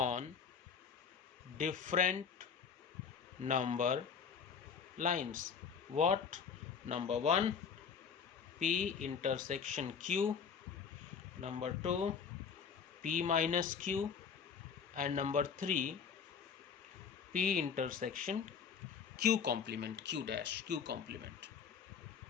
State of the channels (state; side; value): quieter; right; 6.6 dB